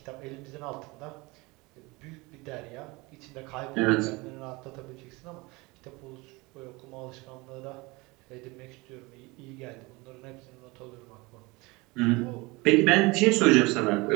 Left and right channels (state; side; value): quieter; left; 24.3 dB